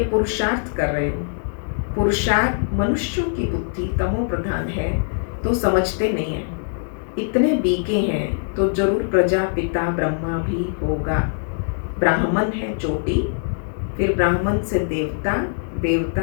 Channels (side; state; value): right; silent; digital silence